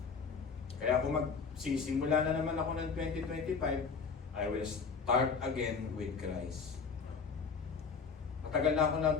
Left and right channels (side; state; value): right; quieter; 5.4 dB